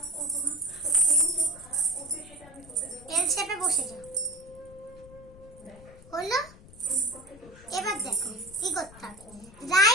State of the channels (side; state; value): left; noise; rumble, 21 dB below the sound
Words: এল শেপে বসে যাও। হলো? এবার দেখো কি করতে হবে।